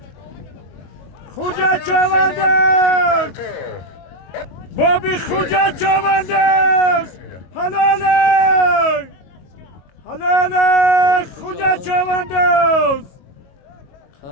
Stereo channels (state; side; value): late; right; 22 ms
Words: خوجه چوانداز بابی خوجه چوانداز حلاله خوجه چوانداز